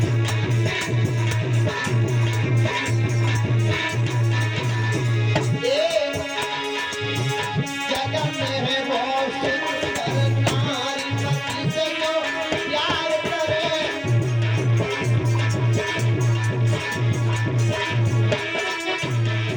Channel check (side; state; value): both; identical; correlation 1.00